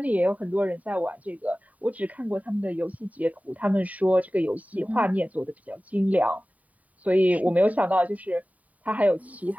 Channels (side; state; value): left; late; 0.071 ms